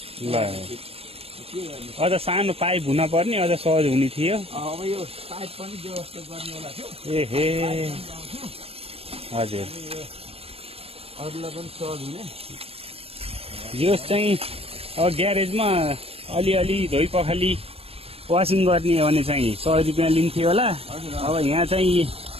ल के गर्ने अझ सानो पाइप हुन पर्ने, अझ सहज हुने थियो। अब यो पाइप पनि व्यवस्था गर्ने होला थियो। एहे हजुर, अरूलाई पनि सहज हुने। यो चाहिँ अब ग्यारेजमा अलिअलि धोइ पखाली वासिङ गर्ने हो भने चाहिँ 100 रुपियाँ लिन्थ्यो होला। हजुर अब यहाँ चाहिँ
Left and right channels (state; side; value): late; left; 0.28 ms